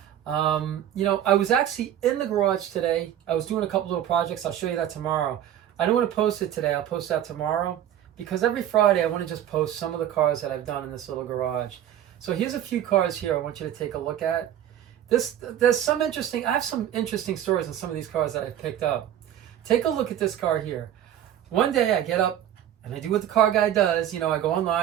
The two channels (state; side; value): quieter; left; 11.1 dB